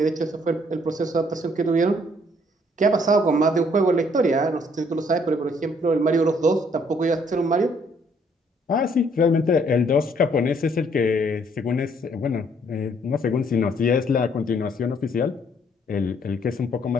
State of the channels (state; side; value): normal; both; correlation 0.65